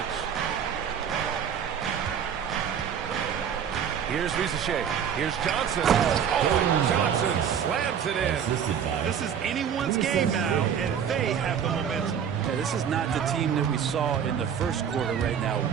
Here's Rizachet. Here's Johnson. Oh, and Johnson slams it in. This is anyone's game now, and they have the momentum. Yeah, this is not the team that we saw in the first quarter right now.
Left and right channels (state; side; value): quieter; left; 8.1 dB